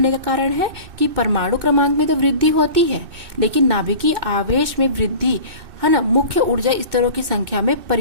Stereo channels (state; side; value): late; left; 2.6 ms